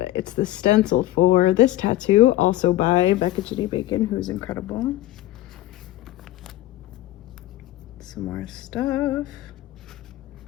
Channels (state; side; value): quieter; right; 15.4 dB